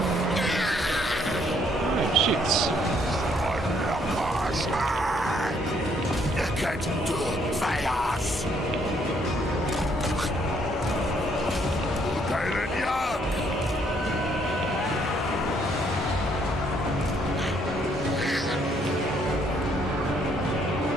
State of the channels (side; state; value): both; normal; correlation 0.68